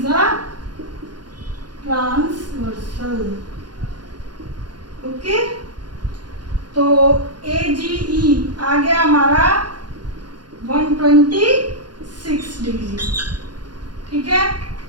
a transversal. Okay, तो AGE आ गया हमारा 126 डिग्री, ठीक है?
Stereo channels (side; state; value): left; late; 0.70 ms